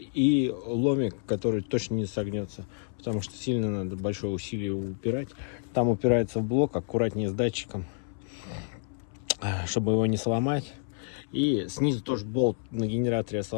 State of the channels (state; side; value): silent; right; 59 dB below the other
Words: ломик, который точно не согнется, потому что сильно надо большое усилие упирать. Там упирается в блок, аккуратнее с датчиком, чтобы его не сломать. И снизу тоже болт на генераторе